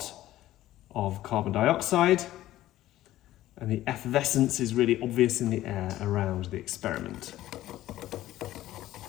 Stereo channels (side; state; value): right; quieter; 14.6 dB